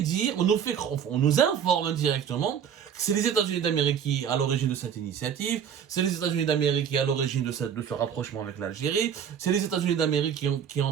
informe indirectement que c'est les États-Unis d'Amérique qui sont à l'origine de cette initiative, c'est les États-Unis d'Amérique qui sont à l'origine de ce rapprochement avec l'Algérie, c'est les États-Unis d'Amérique qui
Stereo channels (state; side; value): quieter; left; 8.2 dB